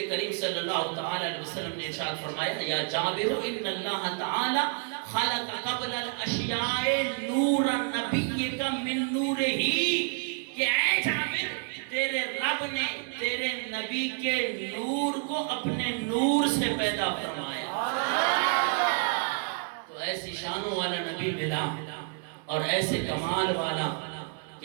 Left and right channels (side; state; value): left; quieter; 38.9 dB